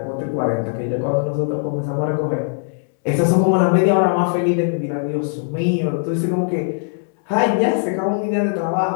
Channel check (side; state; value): right; silent; 63 dB below the other